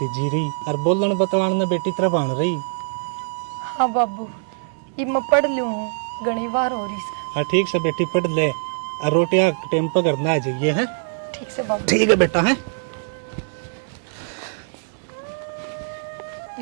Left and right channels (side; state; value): left; silent; 64 dB below the other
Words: रही और बोलन बतवान ने बेटी तरह बन रही। हाँ बाबू ये मैं पढ़ लूँ हूँ घनी बार हो रही से। हाँ ठीक से बेटी पढ़ ले और रोटियां टाइम पर करना आ जाइए है। ठीक से बाबू। ठीक है बेटा है।